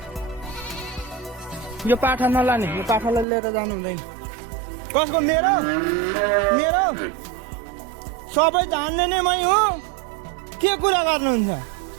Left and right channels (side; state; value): left; drops out; at 3.2 s